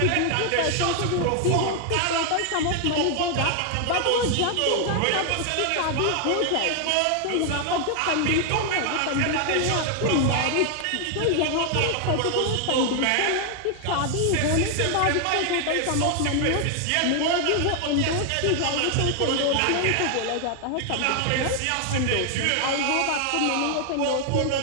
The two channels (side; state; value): both; different; correlation 0.00